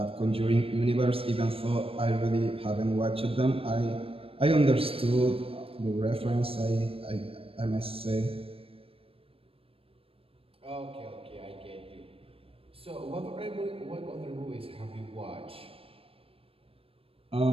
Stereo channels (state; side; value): late; left; 0.27 ms